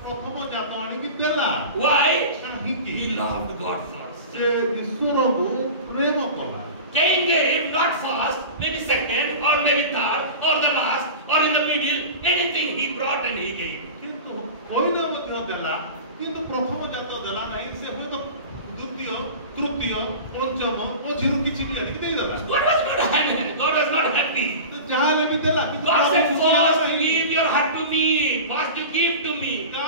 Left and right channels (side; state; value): both; inverted; correlation -0.33